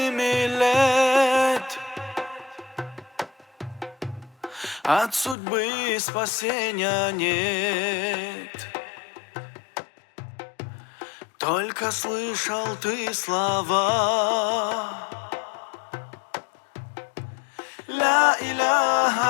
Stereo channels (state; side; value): drops out; right; at 5.4 s